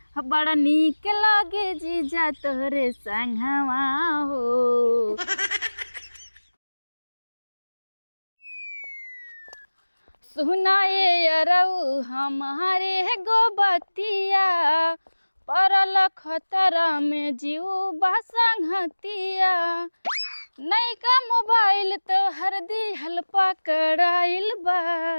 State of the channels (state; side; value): inverted; both; correlation -1.00